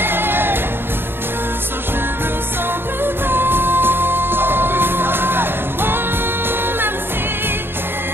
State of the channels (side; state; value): left; late; 0.10 ms